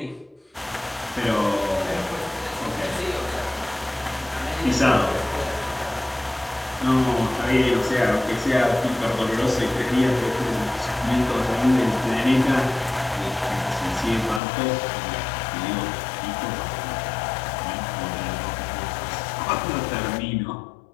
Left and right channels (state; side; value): drops out; right; at 14.4 s